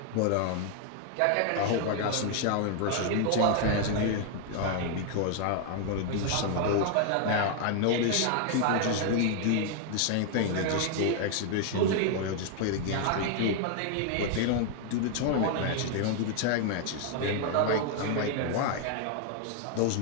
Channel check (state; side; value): different; both; correlation 0.00